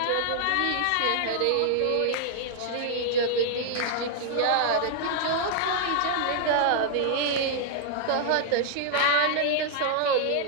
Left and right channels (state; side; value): different; both; correlation 0.00